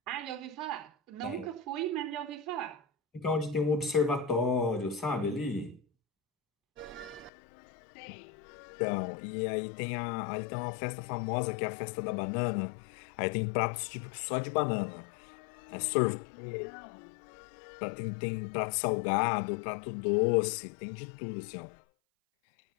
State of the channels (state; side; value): drops out; right; at 7.3 s